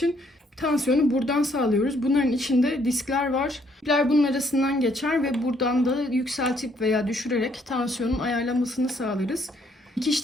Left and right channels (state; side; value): normal; both; correlation 0.68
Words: tansiyonu buradan sağlıyoruz. Bunların içinde diskler var. İpler bunun arasından geçer ve buradan da yükseltip veya düşürerek tansiyonun ayarlanmasını sağlarız.